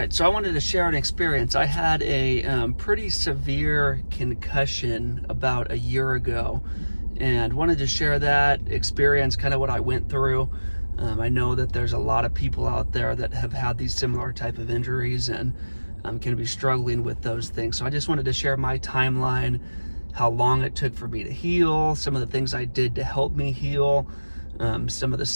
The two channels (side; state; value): both; inverted; correlation -1.00